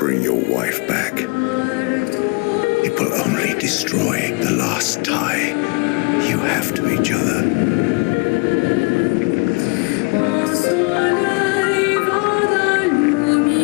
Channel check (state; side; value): quieter; right; 31.2 dB